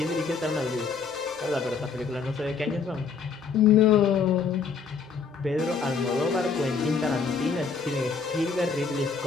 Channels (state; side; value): quieter; right; 5.4 dB